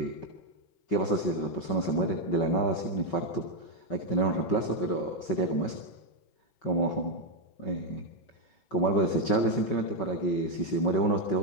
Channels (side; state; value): right; late; 5.3 ms